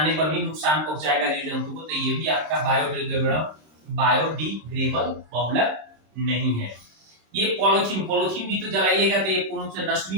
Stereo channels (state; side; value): late; left; 26 ms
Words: पर भी नुकसान पहुंचाएगा जीव जंतु को, तो ये भी आपका बायोडिग्रेडेबल बहुलक नहीं है। ये पॉलीथीन भी तो जलाइएगा तो ये पूर्ण रूप से नष्ट भी